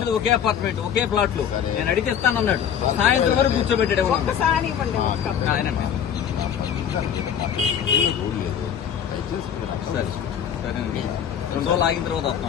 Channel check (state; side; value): quieter; right; 8.6 dB